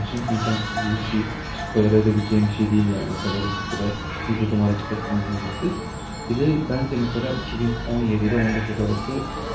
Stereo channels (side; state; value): both; identical; correlation 1.00